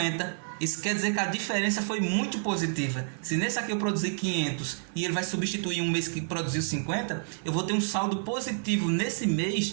Isso quer dizer que a diferença foi muito positiva. Se nesse aqui eu produzir 500 e ele vai substituir um mês que produziu 50, eu vou ter um saldo positivo nesse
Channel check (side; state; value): left; silent; digital silence